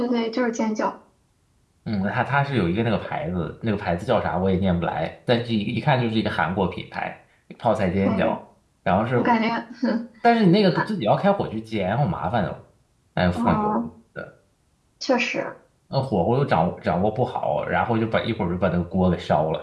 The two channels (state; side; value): identical; both; correlation 1.00